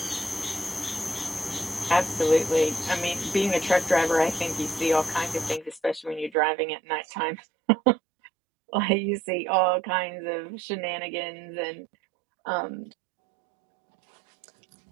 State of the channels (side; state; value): left; drops out; at 6.3 s